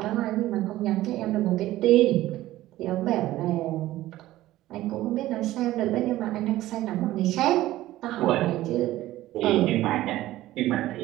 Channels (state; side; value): quieter; left; 15.6 dB